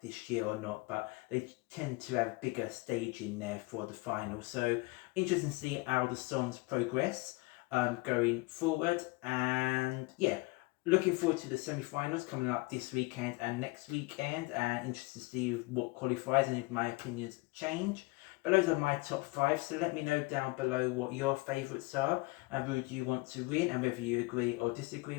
this year or not, but they tend to have bigger staging there for the final. So interesting to see how the songs progress going forward. And yeah, looking forward to the semi-finals coming up this weekend and next weekend, and interested to see what qualifies and if my opinions change. But those are my top 5, so let me know down below what your favourites are and who do you want to win, and whether you agree or disagree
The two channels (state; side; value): quieter; right; 24.6 dB